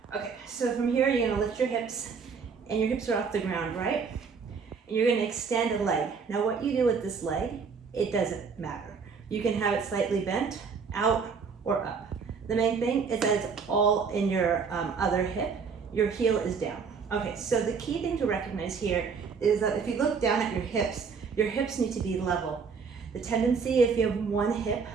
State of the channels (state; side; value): quieter; left; 5.6 dB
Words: Okay, so from here, you're going to lift your hips, and your hips are off the ground, right? And you're going to extend a leg. Now, what you do with this leg, it doesn't matter. You can have it slightly bent, out, or up. The main thing is that it's all in your other hip. Your heel is down. Okay, so the key thing to recognize here is that if you look down at your hips need to be level. The tendency, if you have one hip